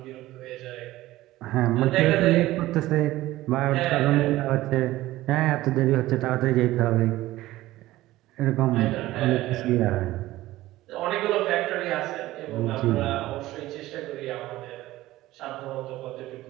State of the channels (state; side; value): quieter; left; 16.6 dB